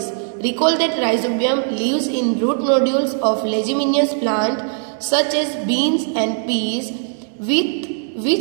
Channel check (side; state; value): left; silent; 60 dB below the other